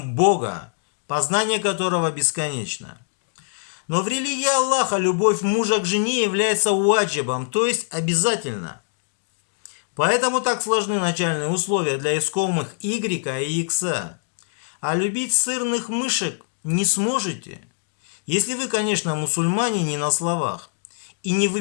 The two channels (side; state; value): right; silent; digital silence